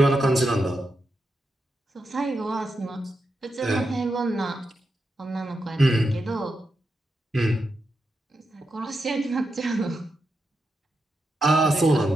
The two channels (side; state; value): both; normal; correlation 0.86